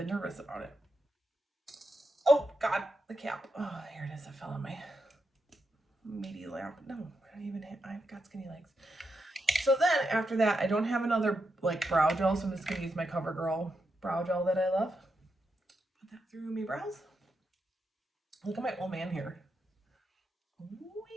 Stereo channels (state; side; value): normal; both; correlation 0.85